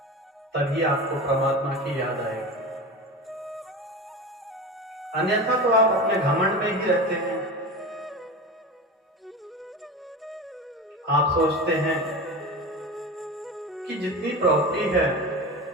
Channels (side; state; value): both; normal; correlation 0.28